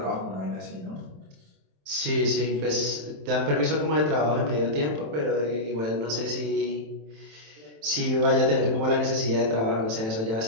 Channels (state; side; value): late; left; 27 ms